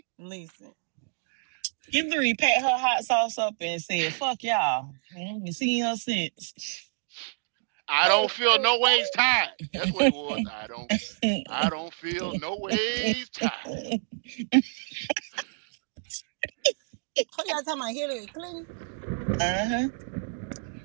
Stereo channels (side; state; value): left; silent; digital silence